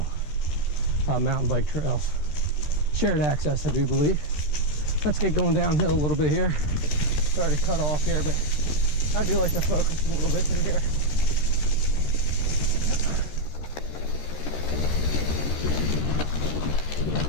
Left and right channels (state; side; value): late; right; 13 ms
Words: mountain bike trails. Shared access, I do believe. Let's get going downhill a little bit here. Sorry to cut off here, but I do like to focus a little bit through here.